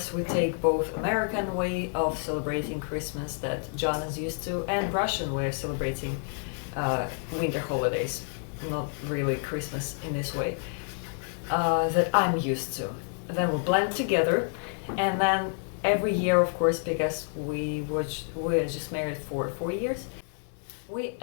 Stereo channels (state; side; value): silent; right; 59 dB below the other